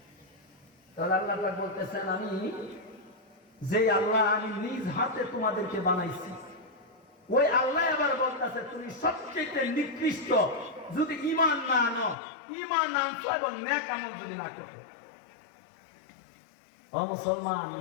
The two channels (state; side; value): drops out; right; at 12.2 s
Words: তাহলে আল্লাহ পাক বলতেছেন, আমি যে আল্লাহ আমি নিজ হাতে তোমাদেরকে বানাইছি, ওই আল্লাহ আবার বলতেছে তুমি সবচেয়ে নিকৃষ্ট যদি ঈমান না আনো, ঈমান আনছো এবং নেক আমল যদি না করো। ও মুসলমান,